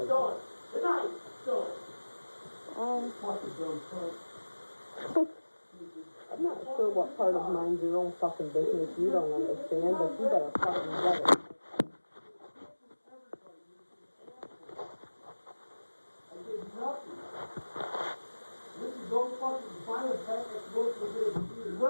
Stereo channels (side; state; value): both; inverted; correlation -1.00